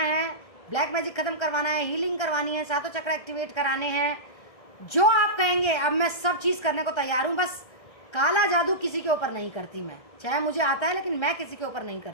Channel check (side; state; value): right; late; 1.6 ms